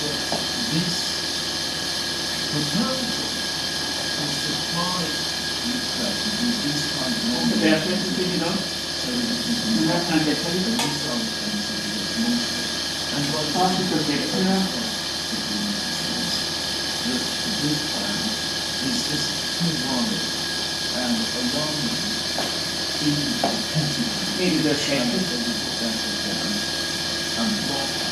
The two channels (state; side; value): identical; both; correlation 1.00